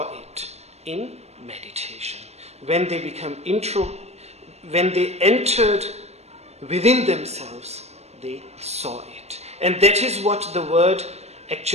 it in meditation. When they when they entered within themselves, they saw it. And that is what the word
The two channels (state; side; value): late; left; 0.31 ms